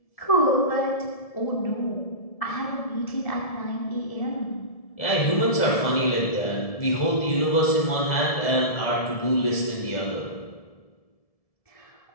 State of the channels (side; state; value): right; late; 1.7 ms